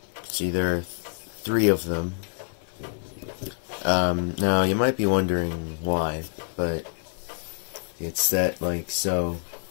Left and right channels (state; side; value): silent; right; digital silence